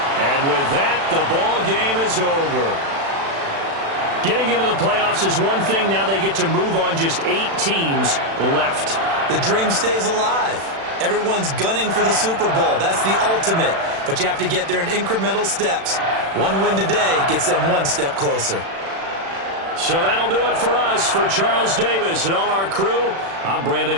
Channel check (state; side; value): late; left; 36 ms